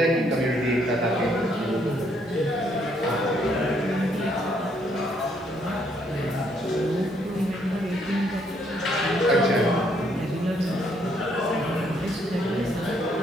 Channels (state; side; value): normal; both; correlation 0.70